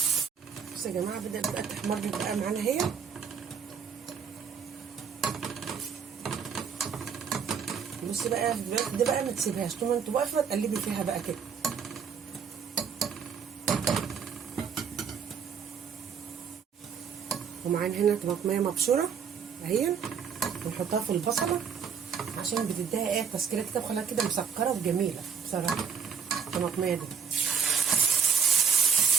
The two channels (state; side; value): quieter; left; 6.8 dB